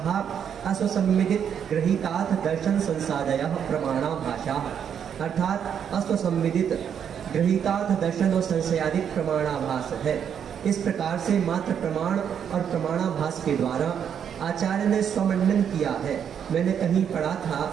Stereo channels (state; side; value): quieter; left; 8.2 dB